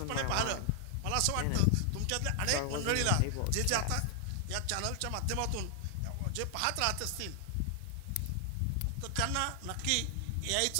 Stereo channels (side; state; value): both; different; correlation 0.00